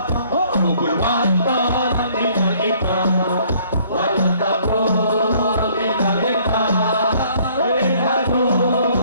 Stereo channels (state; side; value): inverted; both; correlation -0.60